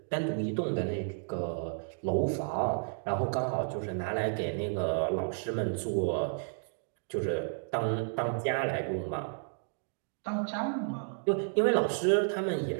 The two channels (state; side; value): silent; left; digital silence